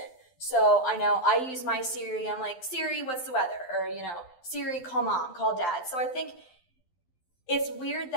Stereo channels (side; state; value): right; late; 12 ms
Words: So I know I use my Siri, I'm like, Siri, what's the weather? Or, Siri, call mom, call dad. So I think it's weird